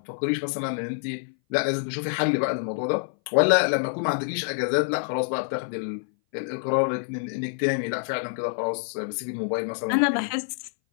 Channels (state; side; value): silent; right; 58 dB below the other